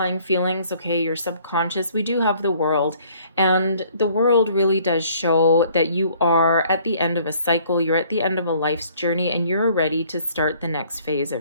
feelings, okay, your subconscious, we do have the World, and the World really does show that you are at the end of a cycle, you're at the end of a life's journey, and you're ready to start the next phase of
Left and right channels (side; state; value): both; inverted; correlation -0.59